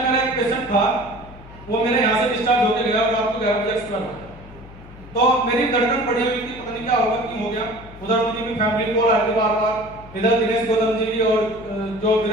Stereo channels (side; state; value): left; noise; hum, 18 dB below the sound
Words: मेरा एक पेशेंट था, वो मेरे यहाँ से डिस्चार्ज होकर गया और रात को 11 बजे एक्सपायर हो गया। तो मेरी धड़कन बढ़ी हुई थी, पता नहीं क्या होगा, क्यों हो गया। उधर मुझे भी फैमिली कॉल आ रही थी बार-बार, इधर दिनेश गौतम जी की और जो